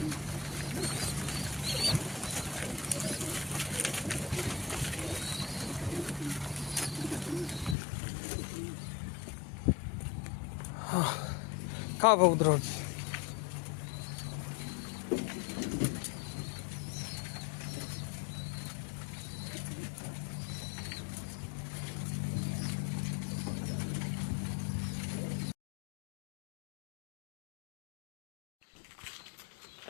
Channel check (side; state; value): right; drops out; at 7.8 s